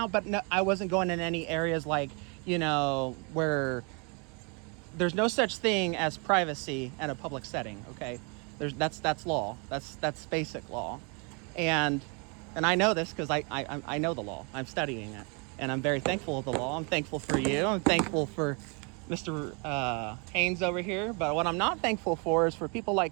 but no, I wasn't going in any areas like, you know, where there's no such thing as privacy in a public setting. Okay, that's law. That's basic law, and I know this because I know the law. I'm studying it, and I'm very thankful of the law. I'm thankful for you. I'm thankful for Mr. Haynes over here. But what I'm not thankful for is for people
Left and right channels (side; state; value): left; quieter; 33.9 dB